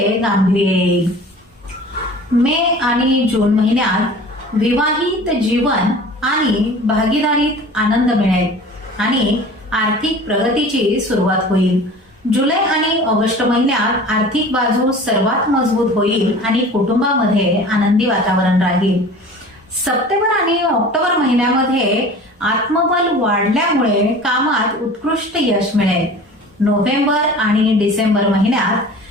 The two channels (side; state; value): both; normal; correlation 0.42